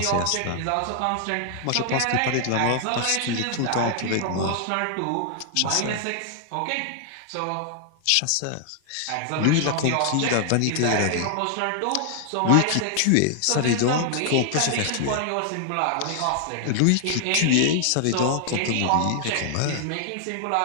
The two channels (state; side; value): different; both; correlation 0.00